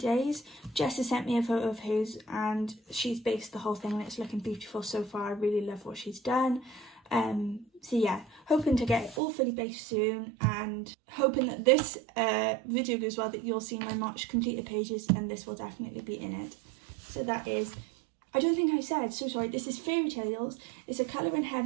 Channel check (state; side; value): drops out; left; at 9.2 s